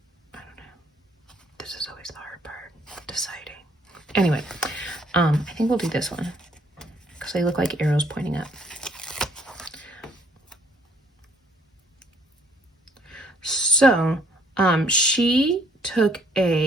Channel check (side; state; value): both; normal; correlation 0.64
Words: I don't know. This is always the hard part, deciding. Anyway, I think we'll do this one because they look like arrows pointing up. So, she took